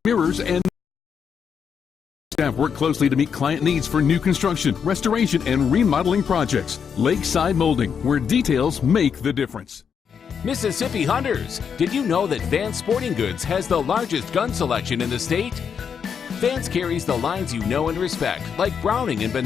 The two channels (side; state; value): right; quieter; 7.0 dB